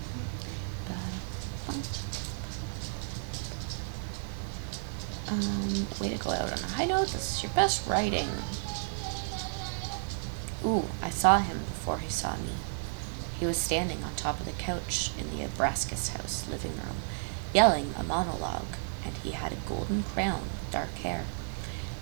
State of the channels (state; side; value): silent; left; 56 dB below the other